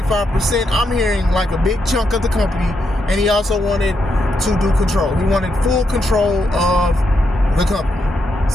I'm hearing like a big chunk of the company. And he also wanted to do control. He wanted full control of the company.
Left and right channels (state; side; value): normal; both; correlation 0.81